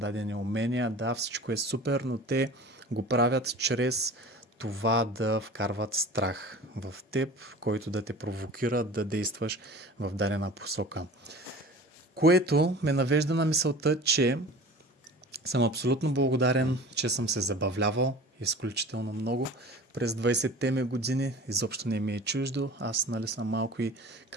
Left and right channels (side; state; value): both; normal; correlation 0.40